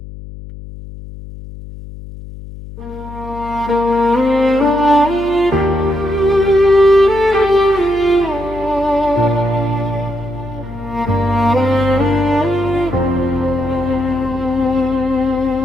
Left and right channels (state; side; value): noise; left; hum, 14 dB below the sound